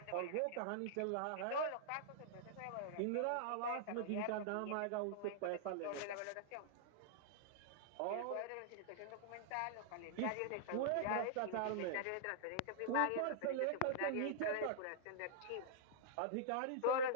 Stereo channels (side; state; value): both; different; correlation -0.01